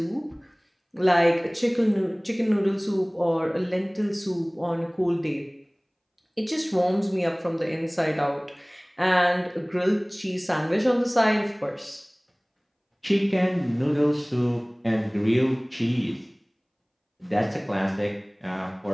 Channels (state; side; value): identical; both; correlation 1.00